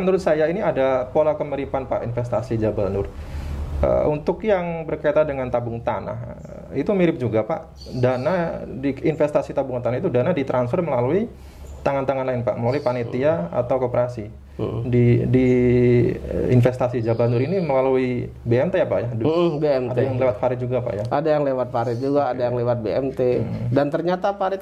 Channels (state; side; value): identical; both; correlation 1.00